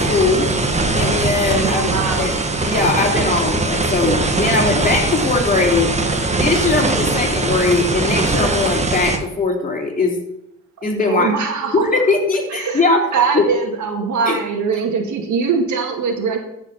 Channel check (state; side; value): normal; both; correlation 0.25